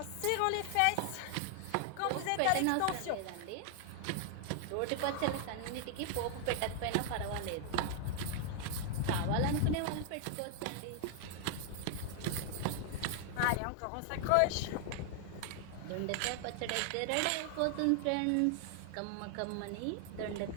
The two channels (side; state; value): both; different; correlation 0.00